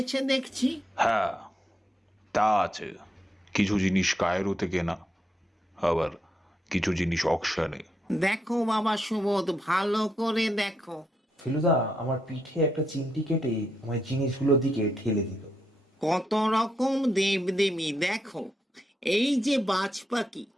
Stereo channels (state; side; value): normal; both; correlation 0.81